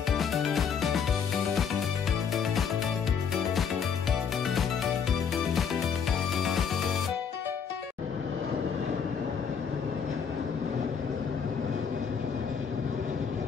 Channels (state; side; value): quieter; right; 6.8 dB